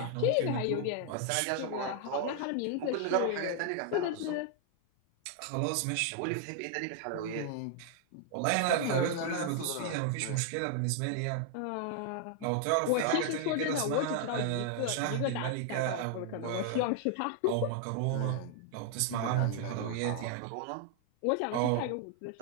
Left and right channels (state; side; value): different; both; correlation 0.00